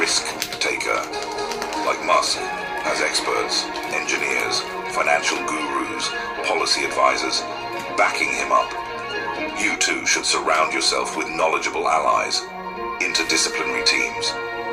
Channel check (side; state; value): both; identical; correlation 1.00